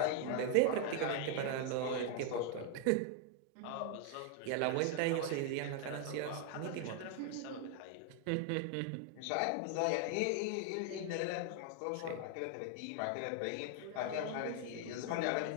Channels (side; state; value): both; different; correlation 0.00